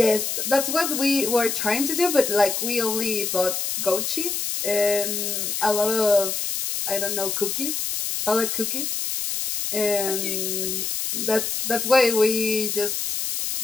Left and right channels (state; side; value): noise; left; hiss, 2 dB below the sound